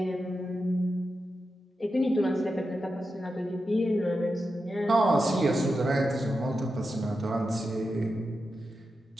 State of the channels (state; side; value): normal; both; correlation 0.89